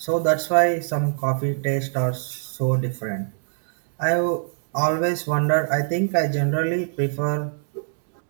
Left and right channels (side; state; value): left; silent; digital silence